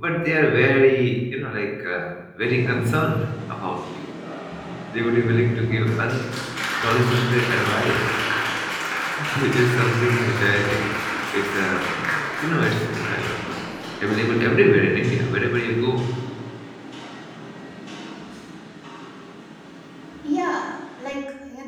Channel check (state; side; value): identical; both; correlation 1.00